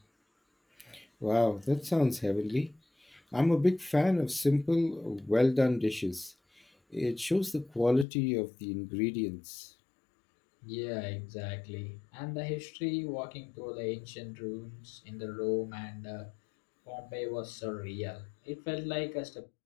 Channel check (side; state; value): right; drops out; at 8.1 s